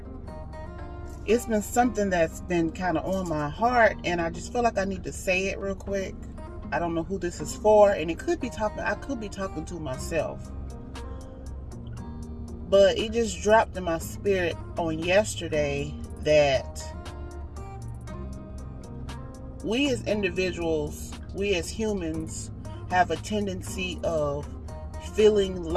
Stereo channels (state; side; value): identical; both; correlation 1.00